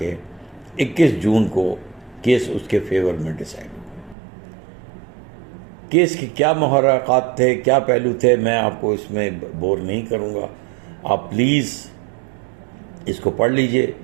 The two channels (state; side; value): drops out; left; at 4.2 s